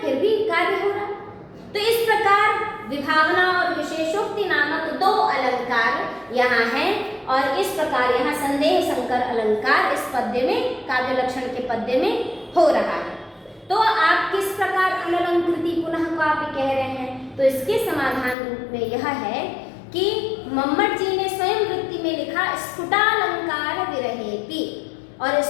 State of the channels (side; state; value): right; drops out; at 18.4 s